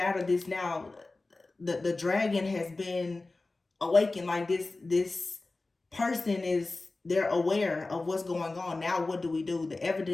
of this now? The dragon has been awakened. Like this person is They're aware of what's going on. Now what do we do? The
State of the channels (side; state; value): right; quieter; 3.3 dB